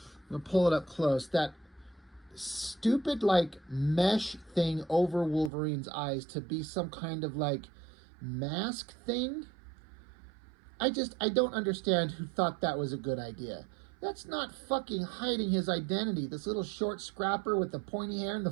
I'm going to pull it up close. That stupid, like, mesh thing over Wolverine's eyes to be some kind of, like, mask thing. I don't understand who thought that was a good idea. That's not fucking hiding his identity. This little short scrapper with the pointy hair and the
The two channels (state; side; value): drops out; left; at 5.5 s